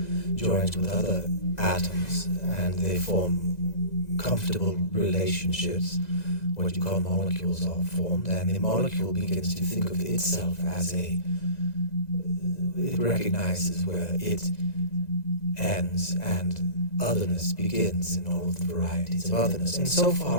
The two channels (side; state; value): right; late; 2.0 ms